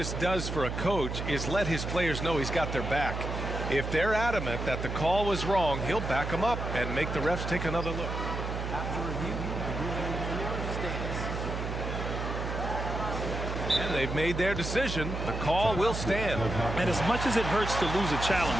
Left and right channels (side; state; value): right; noise; hum, 4 dB below the sound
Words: does for a coach is let his players know he's got their back. If they're adamant that the call was wrong, he'll back them up and make the refs take another look. After review, the ruling on the floor stands. And they've made their decision. The call will stand. And as much as it hurts to lose a